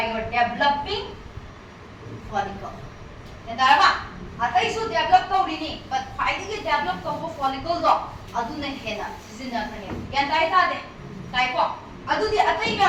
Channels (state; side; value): identical; both; correlation 1.00